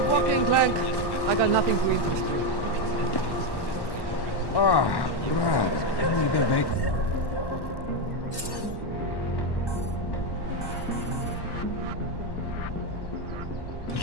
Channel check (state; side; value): late; right; 1.1 ms